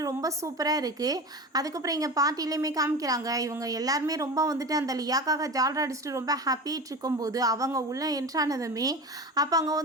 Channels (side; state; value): both; normal; correlation 0.29